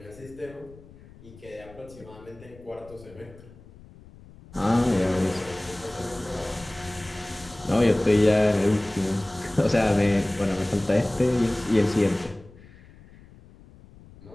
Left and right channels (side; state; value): left; noise; rumble, 22 dB below the sound